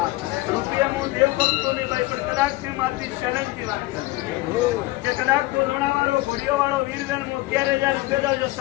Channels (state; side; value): quieter; right; 19.5 dB